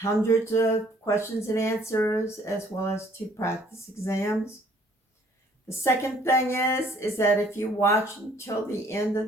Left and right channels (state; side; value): normal; both; correlation 0.59